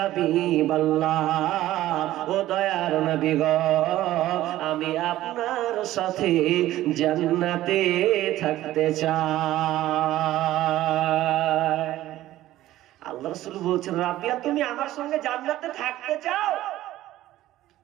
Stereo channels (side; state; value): left; quieter; 14.8 dB